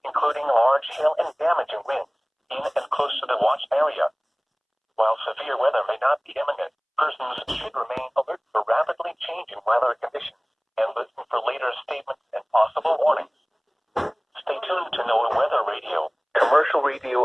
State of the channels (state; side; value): identical; both; correlation 1.00